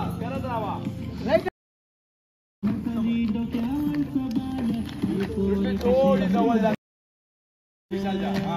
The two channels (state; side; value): identical; both; correlation 1.00